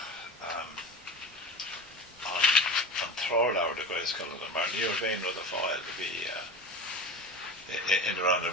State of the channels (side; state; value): both; normal; correlation 0.30